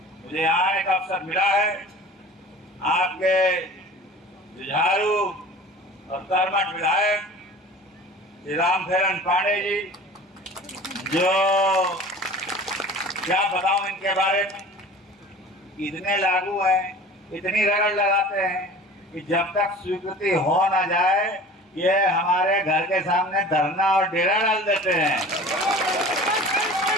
मुझे आने का अवसर मिला है, आपके जुझारू और कर्मठ विधायक श्री रामफेरन पांडे जी, जो क्या बताऊं इनके बारे में, इतने लागू हैं, इतनी रगड़ लगाते हैं कि जब तक स्वीकृति हो ना जाए ये हमारे घर के सामने धरना और डेरा डाल देते हैं।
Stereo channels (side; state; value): both; normal; correlation 0.41